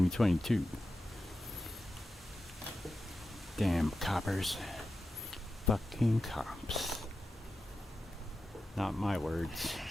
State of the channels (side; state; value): both; normal; correlation 0.91